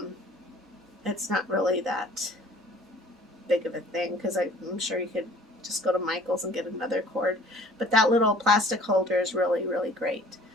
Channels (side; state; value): both; normal; correlation 0.52